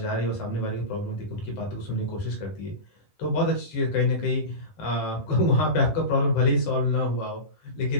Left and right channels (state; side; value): late; right; 10 ms